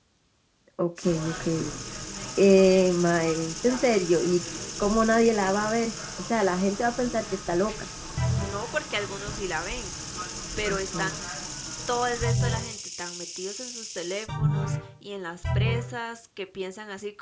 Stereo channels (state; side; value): identical; both; correlation 1.00